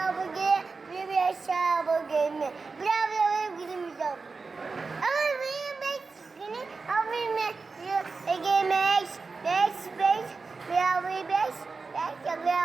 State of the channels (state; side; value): quieter; left; 4.3 dB